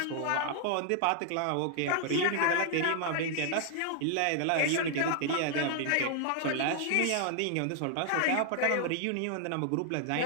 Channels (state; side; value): different; both; correlation 0.00